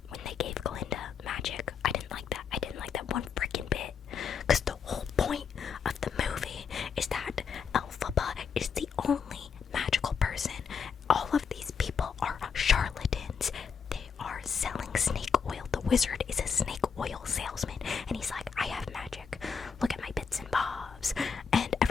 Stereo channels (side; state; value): right; quieter; 6.2 dB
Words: when they gave Glinda magic. I didn't like that. I didn't like that one freaking bit. Because the whole point of the movie is that Elphaba is the only magical person. All of these people are charlatans. They are selling snake oil. The wizard is a snake oil salesman, and he's like, I have magic. Look at my bits and bobs. And